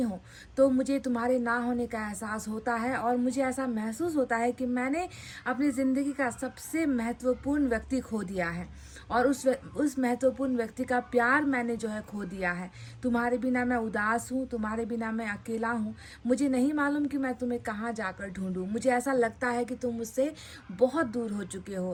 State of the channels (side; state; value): both; identical; correlation 1.00